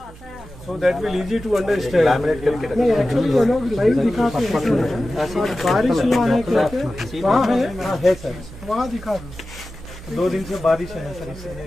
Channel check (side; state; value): both; normal; correlation 0.95